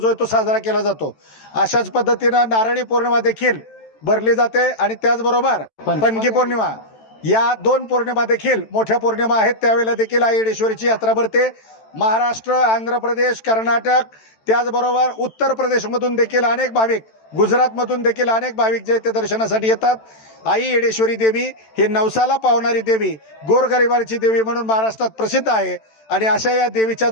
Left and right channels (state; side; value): late; right; 14 ms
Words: आहे तो साजरा केला जातो. अशाच पद्धतीनं नारळी पौर्णिमा देखील भरली जाते आणि त्याचबरोबर पणगी पौर्णिमा या 2 पौर्णिमा देखील मोठ्या पौर्णिमा आहेत. त्यावेळेला देखील आई येडेश्वरीची यात्रा भरते. महाराष्ट्र, आंध्र प्रदेश, कर्नाटक त्याचबरोबर उत्तर प्रदेशमधून देखील अनेक भाविक, गुजरातमधून देखील अनेक भाविक जे ते दर्शनासाठी येतात. आई येडेश्वरी देवी ही नवसाला पावणारी देवी, गोरगरिबाची देवी म्हणून महाराष्ट्रात प्रसिद्ध आहे आणि अशा या देवीच्या